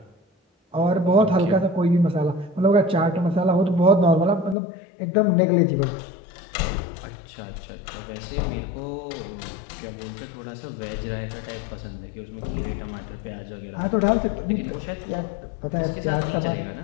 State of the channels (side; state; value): right; drops out; at 4.5 s